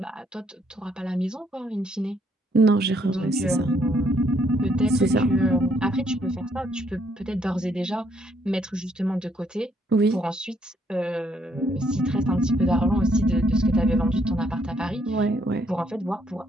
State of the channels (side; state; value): both; normal; correlation 0.71